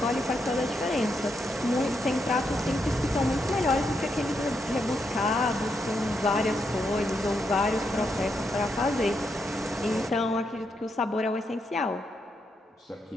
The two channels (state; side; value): normal; both; correlation 0.81